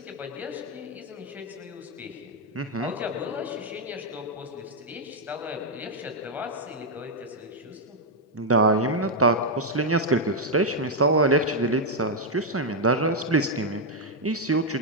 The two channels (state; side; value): normal; both; correlation -0.02